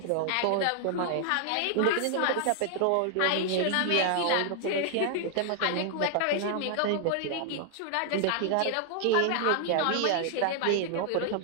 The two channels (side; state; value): both; different; correlation 0.00